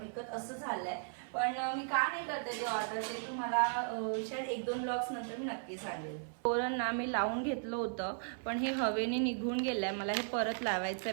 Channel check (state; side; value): silent; left; 54 dB below the other